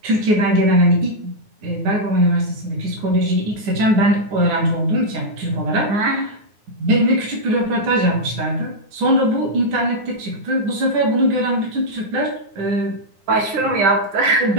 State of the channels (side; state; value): left; late; 9.5 ms